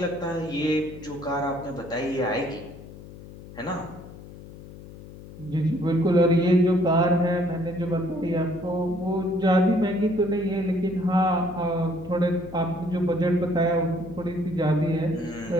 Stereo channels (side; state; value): left; noise; hum, 16 dB below the sound